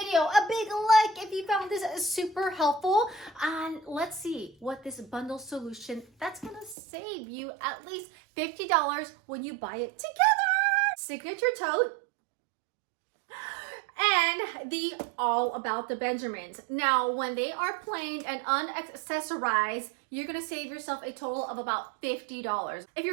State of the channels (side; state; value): left; drops out; at 6.8 s